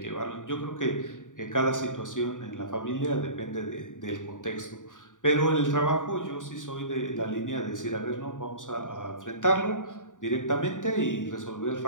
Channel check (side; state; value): right; late; 0.87 ms